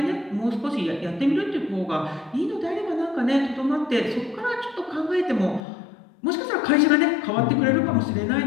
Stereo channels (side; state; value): right; drops out; at 5.6 s